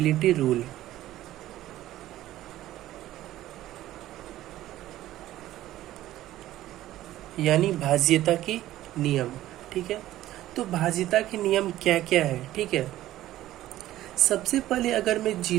रूल, यानी भाज्यता के नियम, ठीक है। तो भाज्यता के नियम क्या क्या है, ठीक है। सबसे पहले अगर मैं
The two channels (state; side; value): quieter; left; 14.4 dB